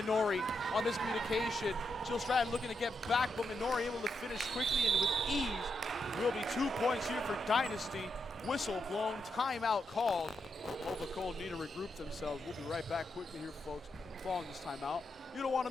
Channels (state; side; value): normal; both; correlation 0.83